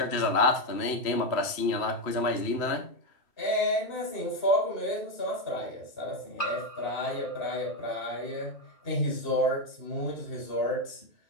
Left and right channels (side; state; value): right; late; 3.0 ms